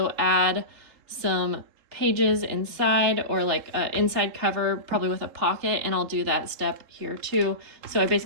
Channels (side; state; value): left; late; 3.7 ms